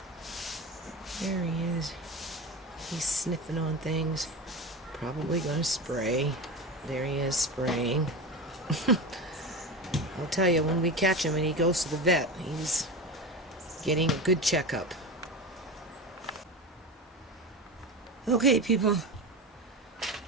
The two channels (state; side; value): normal; both; correlation 0.25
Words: There he is. He's sniffing on things. Probably gonna spray. There he is, spraying. I'll tell you, when we catch him and he goes to the vet, he's getting a good checkup. Okay, people.